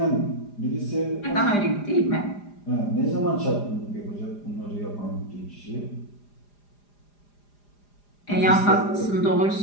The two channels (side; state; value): right; late; 4.9 ms